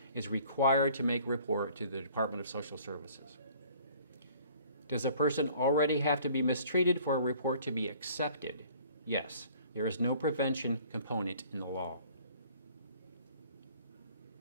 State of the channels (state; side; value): inverted; both; correlation -0.54